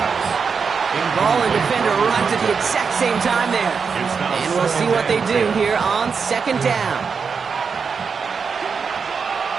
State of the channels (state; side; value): quieter; left; 5.7 dB